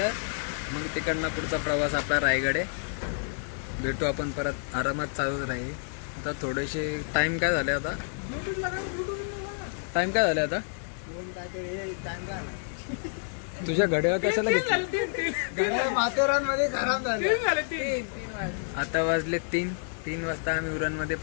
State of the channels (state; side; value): silent; right; digital silence